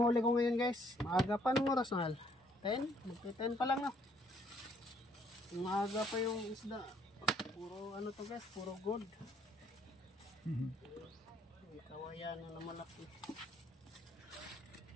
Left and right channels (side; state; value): both; normal; correlation 0.66